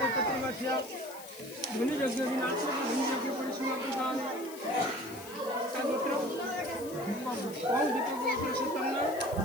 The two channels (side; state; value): left; noise; hiss, 16 dB below the sound